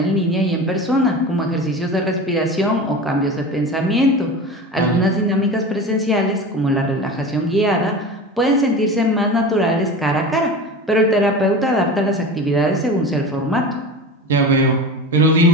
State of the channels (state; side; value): normal; both; correlation 0.31